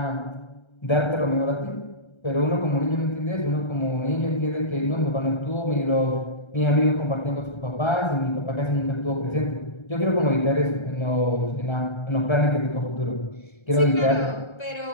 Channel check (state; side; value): late; right; 1.3 ms